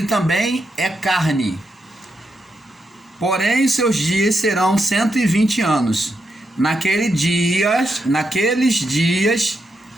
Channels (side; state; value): both; normal; correlation 0.84